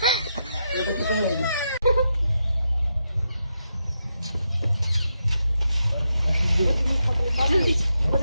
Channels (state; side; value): inverted; both; correlation -0.84